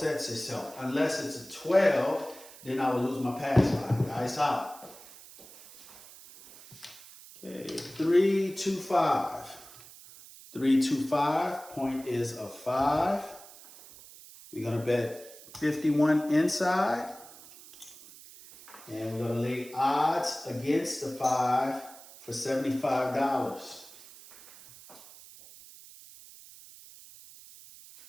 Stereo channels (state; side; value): noise; right; hiss, 19 dB below the sound